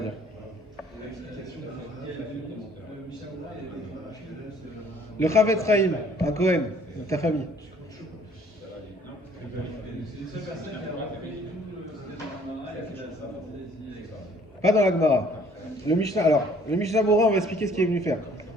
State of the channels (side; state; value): both; normal; correlation 0.58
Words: Le Chavetz Chaim, un Cohen, de ta famille. Pas dans la Gemara. Le Mishnah Berurah, on va expliquer ce qu'il est venu faire.